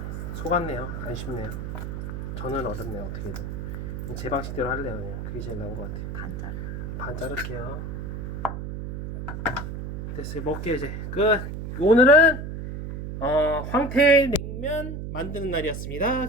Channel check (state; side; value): noise; right; hum, 6 dB below the sound